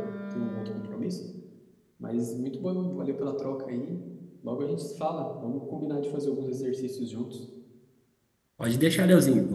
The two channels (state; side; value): identical; both; correlation 1.00